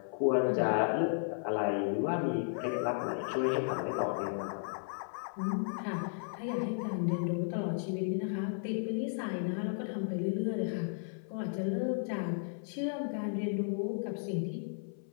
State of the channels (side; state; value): right; silent; 55 dB below the other